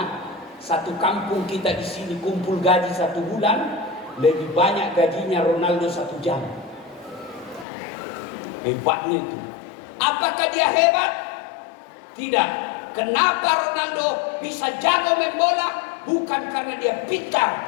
satu kampung kita di sini kumpul gaji 1 bulan lebih banyak gajinya Ronaldo 1 jam. Hebatnya itu. Apakah dia hebat? Tidak. Kenapa Ronaldo bisa jago main bola? Bukan karena dia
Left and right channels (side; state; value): right; drops out; at 7.7 s